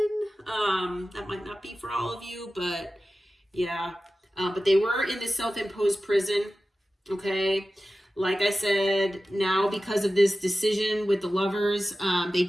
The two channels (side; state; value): both; normal; correlation 0.94